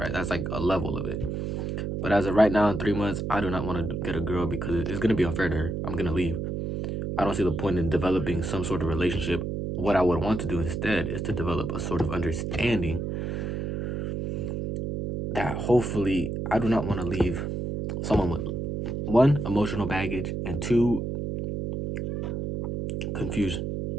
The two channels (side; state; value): right; noise; hum, 3 dB below the sound